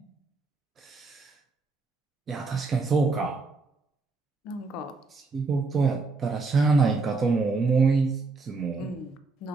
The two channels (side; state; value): left; quieter; 3.9 dB